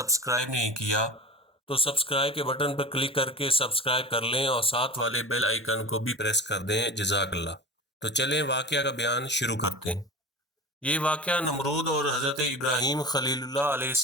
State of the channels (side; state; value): both; normal; correlation 0.32